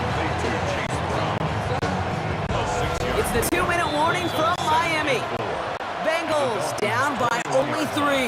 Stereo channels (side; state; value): both; identical; correlation 1.00